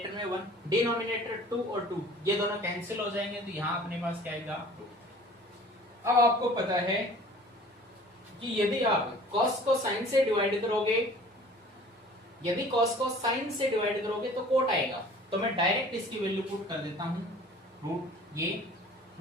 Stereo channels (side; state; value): both; normal; correlation 0.47